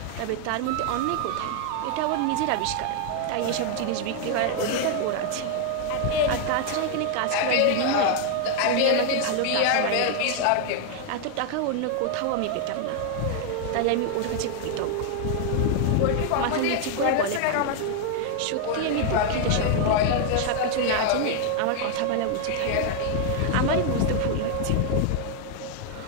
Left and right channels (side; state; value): both; different; correlation 0.00